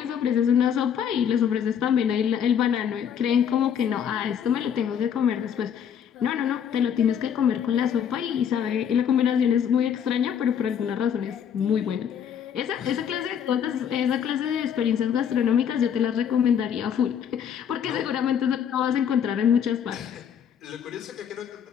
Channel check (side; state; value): right; quieter; 8.4 dB